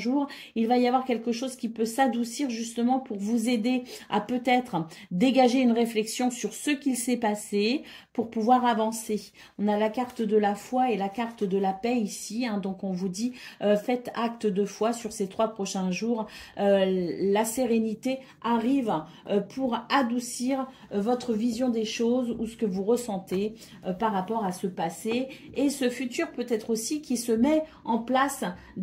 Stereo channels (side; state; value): both; identical; correlation 1.00